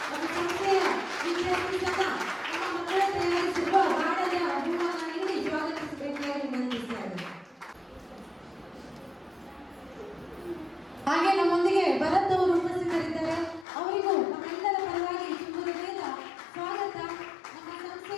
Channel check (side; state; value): right; drops out; at 13.7 s